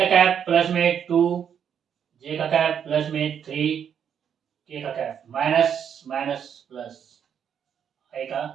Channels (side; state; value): left; quieter; 8.2 dB